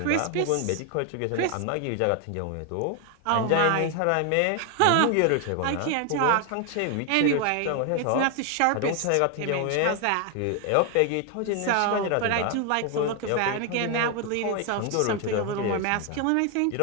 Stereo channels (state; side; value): different; both; correlation 0.01